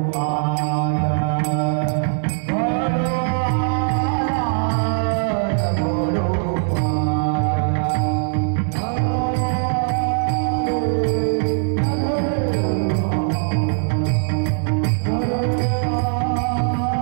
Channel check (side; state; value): left; silent; 65 dB below the other